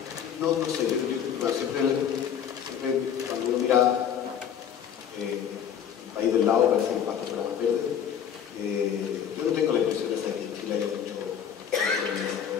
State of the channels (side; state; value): right; quieter; 8.6 dB